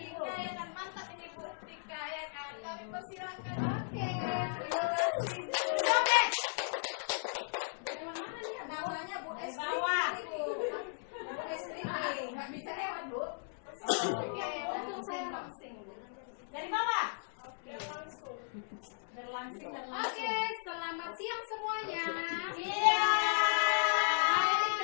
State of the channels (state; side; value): silent; right; 54 dB below the other